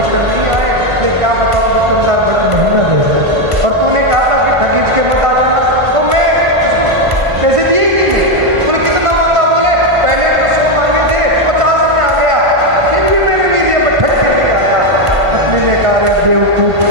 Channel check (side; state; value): left; late; 1.5 ms